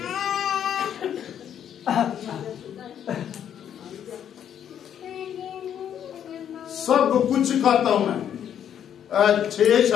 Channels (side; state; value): right; quieter; 9.4 dB